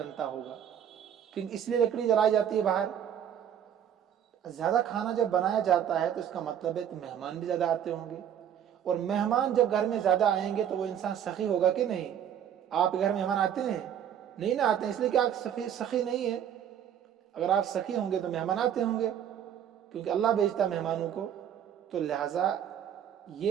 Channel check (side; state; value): left; quieter; 9.4 dB